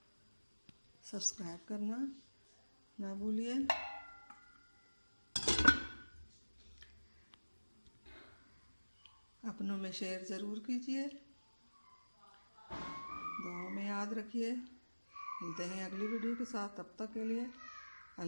सब्सक्राइब करना ना भूलिए। अपनों में शेयर ज़रूर कीजिए। दुआओं में याद रखिए। मिलते हैं अगली वीडियो के साथ। तब तक के लिए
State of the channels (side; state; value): both; inverted; correlation -1.00